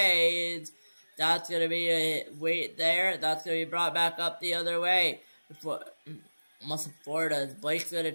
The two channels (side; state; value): both; inverted; correlation -1.00